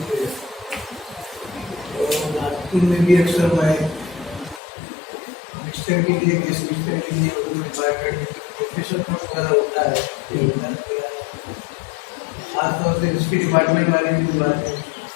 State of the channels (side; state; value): right; drops out; at 4.6 s